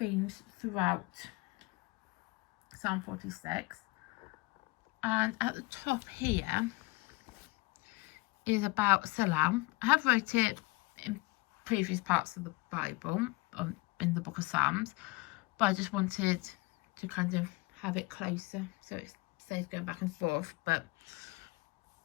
throughout Psalm 46. And at the top here is about Selah. I have wrote it in previous parts of the Bible, in the book of Psalms, but I just wanted to kind of have it closer, so it stays going back and forth, but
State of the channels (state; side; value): quieter; right; 23.5 dB